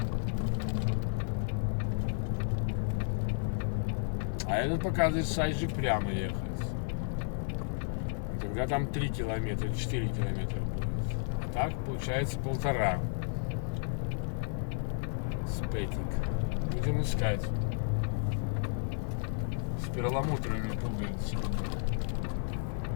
А этот показывает сайджи прямо ехать. Тогда там 3 километра, 4 километра будет. А так получается 1,5. Спетик. Будем искать. С перламутровыми пуговицами.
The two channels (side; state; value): right; silent; 56 dB below the other